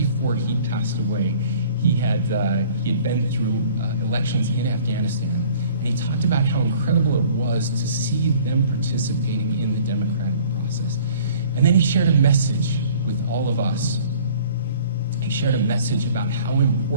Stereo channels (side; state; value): both; inverted; correlation -0.50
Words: he passed away, he had been through elections in Afghanistan, and he talked about how incredible it was to see them participating in the democratic process. And then he shared a message with all of us. He shared a message about how